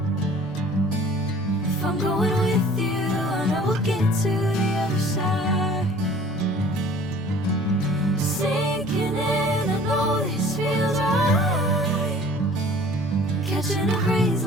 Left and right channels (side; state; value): both; normal; correlation 0.49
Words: If I'm going with you, I know we'll get to the other side. Sinking in, I know this feels right. Catching a breeze,